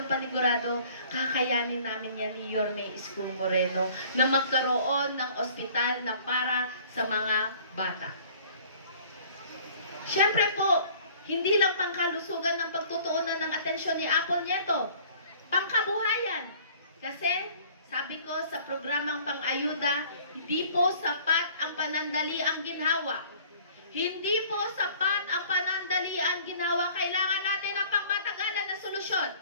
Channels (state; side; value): inverted; both; correlation -0.52